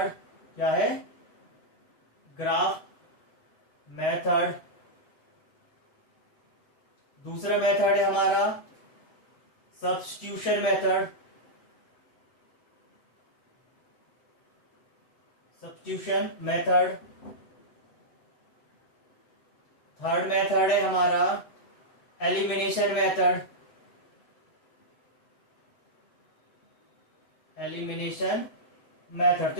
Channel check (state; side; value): late; right; 8.0 ms